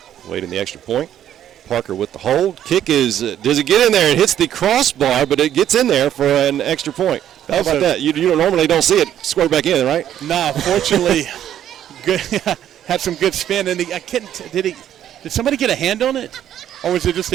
Waiting the extra point. Parker with the hold. Kick is, does it get in there? It hits the crossbar, but it gets in there for an extra point. How about that? You normally don't see it square back in, right? No, fortunately, good. Had some good spin. And did somebody get a hand on it? Or was it just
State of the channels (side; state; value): left; quieter; 10.8 dB